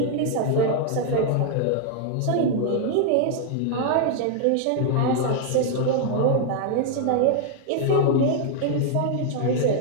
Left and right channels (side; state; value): both; different; correlation 0.00